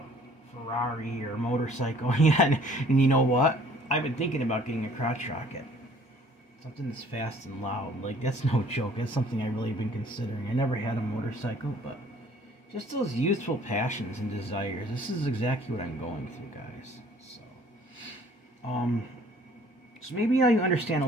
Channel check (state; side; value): normal; both; correlation 0.55